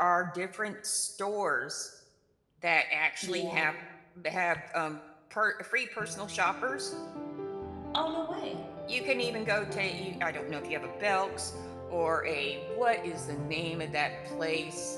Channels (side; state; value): both; identical; correlation 1.00